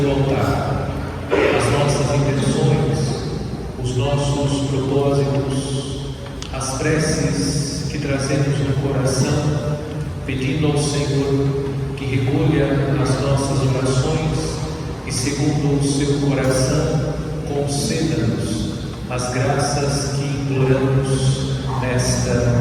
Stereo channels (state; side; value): identical; both; correlation 1.00